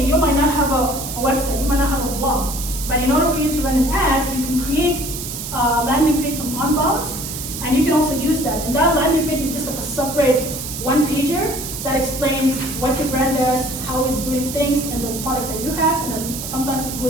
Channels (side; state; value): right; noise; hiss, 7 dB below the sound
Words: you might not have a website, you might not have a blog. But in order for you to run an ad, you can create a landing page from Unbounce, and you can also use that. And that landing page is just like a separate one-pager that explains what your brand does, how it's doing things, and the product that you have. And then sometimes we